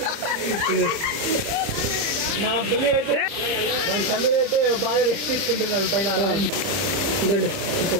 మా పులి అయితే మన సమీర్ అయితే బాగా రెస్ట్ తీసుకుంటున్నాడు పైన. ఇదండి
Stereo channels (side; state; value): left; late; 30 ms